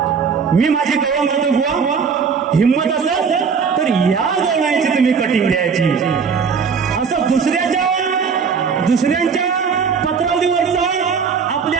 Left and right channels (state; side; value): quieter; left; 6.0 dB